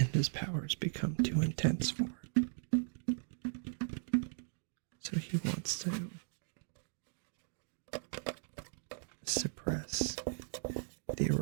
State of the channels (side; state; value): left; silent; digital silence